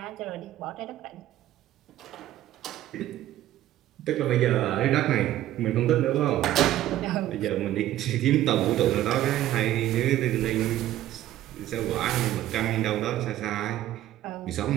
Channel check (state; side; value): quieter; left; 13.6 dB